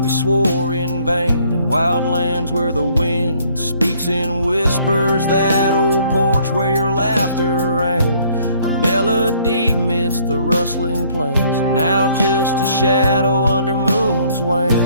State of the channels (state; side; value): inverted; both; correlation -0.62